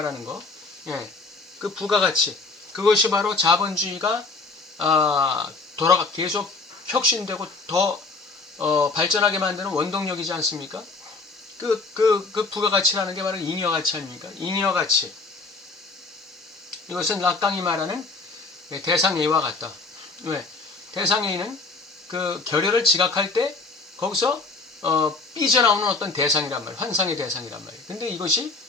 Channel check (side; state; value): right; quieter; 3.9 dB